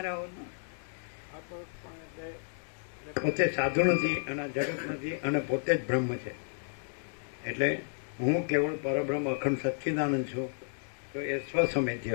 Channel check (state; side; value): silent; right; digital silence